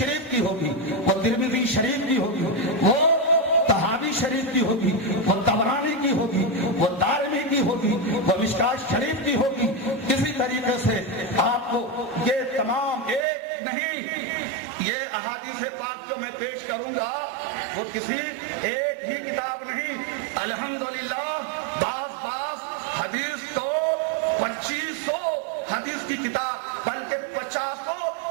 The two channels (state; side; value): drops out; left; at 13.2 s